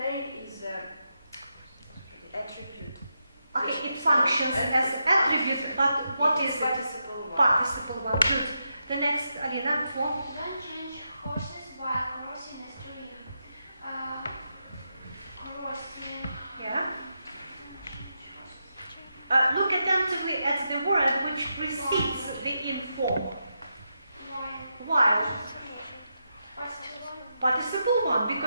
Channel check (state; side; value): inverted; both; correlation -0.85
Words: is the attribute. Okay, it functions as attribute, but what is it? Participle 1. Participle 1. Good. The next, Alina, 4. Don't change horses while crossing a stream. Crossing. Yeah. Look attentively at the word which precedes the inform. While. Participle 1,